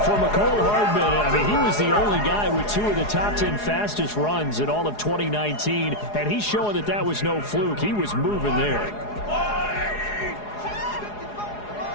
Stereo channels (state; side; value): late; right; 4.8 ms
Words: for McCole Hardman, I mean, he was the only guy with 2 of the top 10 fastest runs in all of 2019, and he's showing that that was no fluke. He was moving there.